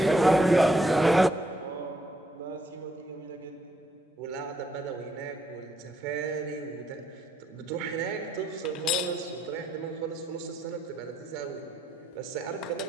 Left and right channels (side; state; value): both; normal; correlation 0.75